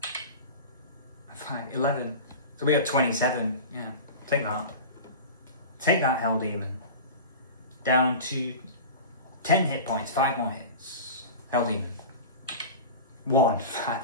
5. 11. So we have 27. Yeah, take that. Take that, Hell Demon. Down to 10 hit points, 5 more hits. Hell Demon. 1.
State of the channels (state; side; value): inverted; both; correlation -0.31